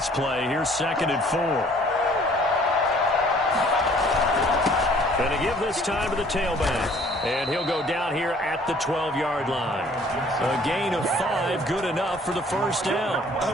play. Here's 2nd and 4. Going to give this time to the tailback. And he'll go down here at the 12-yard line. A gain of 5, good enough for the first down. I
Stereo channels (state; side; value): normal; both; correlation 0.56